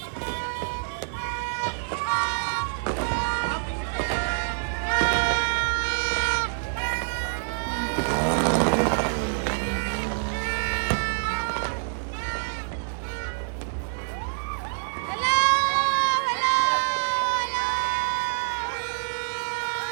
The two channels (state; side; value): silent; left; 61 dB below the other